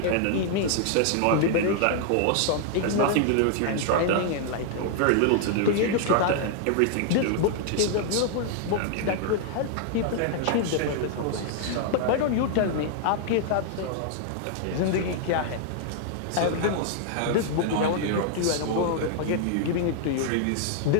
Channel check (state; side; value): different; both; correlation 0.00